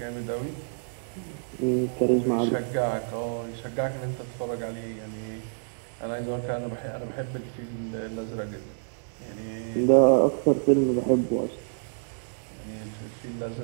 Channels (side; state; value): left; silent; digital silence